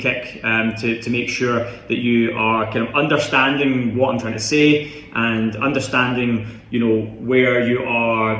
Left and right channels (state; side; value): identical; both; correlation 1.00